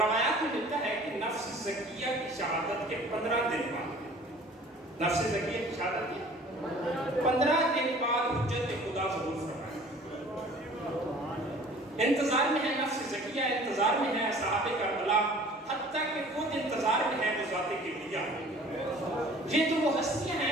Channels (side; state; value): both; normal; correlation 0.49